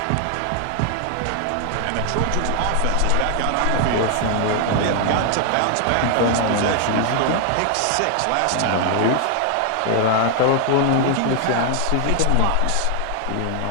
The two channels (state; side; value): different; both; correlation 0.00